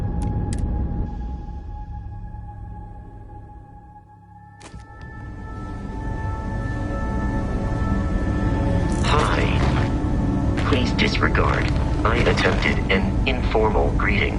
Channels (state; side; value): identical; both; correlation 1.00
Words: Hi. Please disregard. I attempted an informal greeting,